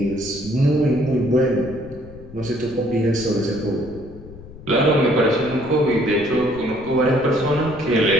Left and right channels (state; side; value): noise; left; rumble, 17 dB below the sound